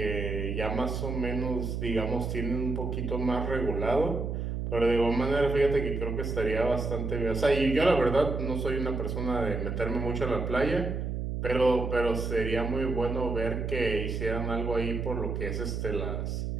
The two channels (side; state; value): right; noise; hum, 3 dB below the sound